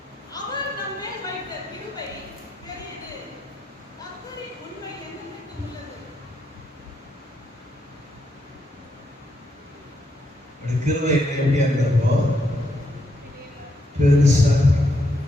கிருபை எப்படியா இருந்தப்போ பெருசா.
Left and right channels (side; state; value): both; normal; correlation 0.78